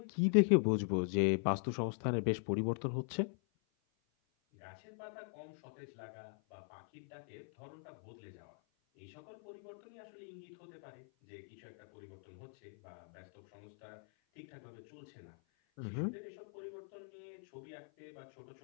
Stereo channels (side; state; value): right; silent; 50 dB below the other